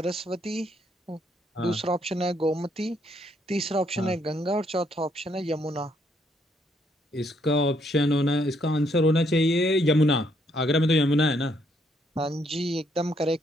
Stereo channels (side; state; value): both; normal; correlation 0.71